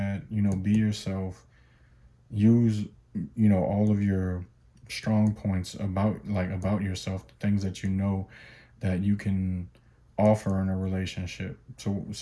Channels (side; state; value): both; identical; correlation 1.00